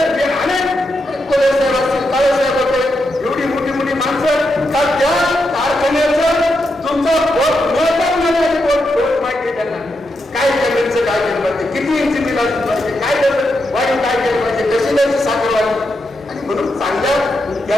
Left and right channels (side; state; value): both; normal; correlation 0.84